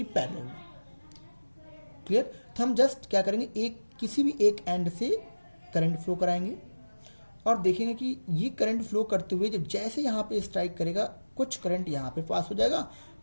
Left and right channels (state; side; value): inverted; both; correlation -1.00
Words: पैरेलल में, क्लियर, तो हम जस्ट क्या करेंगे, एक किसी भी एक एंड से करंट फ्लो कराएंगे और देखेंगे कि ये करंट फ्लो करते हुए जब जैसे यहाँ पे स्ट्राइक करेगा, कुछ करंट यहाँ पे पास हो जाएगा,